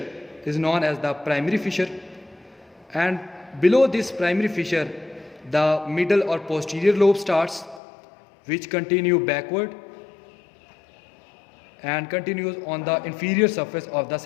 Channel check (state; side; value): drops out; right; at 7.8 s